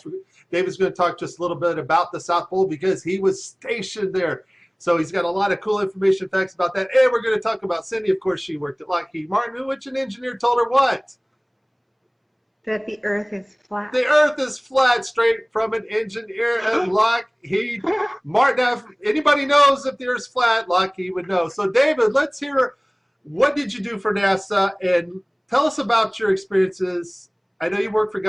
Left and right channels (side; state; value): both; identical; correlation 1.00